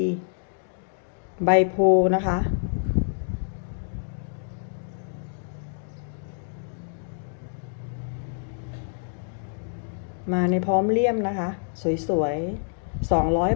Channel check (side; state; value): right; silent; digital silence